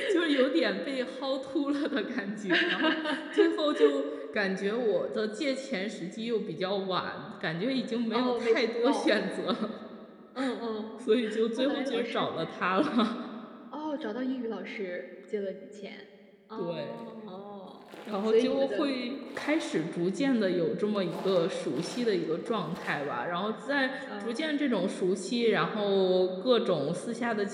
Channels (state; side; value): identical; both; correlation 1.00